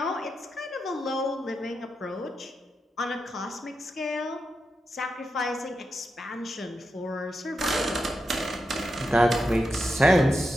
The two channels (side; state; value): both; normal; correlation 0.87